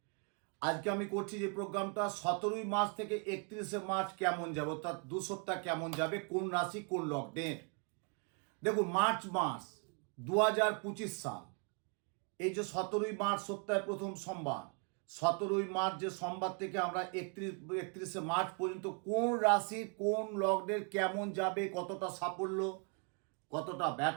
আজকে আমি করছি যে প্রোগ্রামটা 17ই মার্চ থেকে 31শে মার্চ কেমন যাবে, অর্থাৎ 2 সপ্তাহ কেমন যাবে, কোন রাশি কোন লগ্নের। দেখুন, মার্চ মাস 2025 সাল, এই যে 17ই মার্চ সপ্তাহের প্রথম সোমবার, 17ই মার্চ যে সোমবার থেকে আমরা 31শে মার্চ পর্যন্ত কোন রাশি কোন লগ্নের কেমন যাবে, কতটা সাফল্য, কতটা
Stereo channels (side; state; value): left; quieter; 38.8 dB